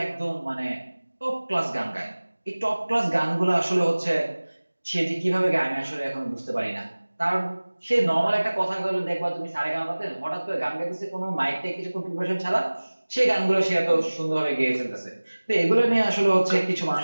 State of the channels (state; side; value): inverted; both; correlation -1.00